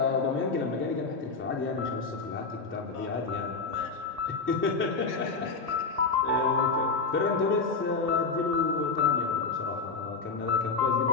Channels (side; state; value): right; quieter; 4.5 dB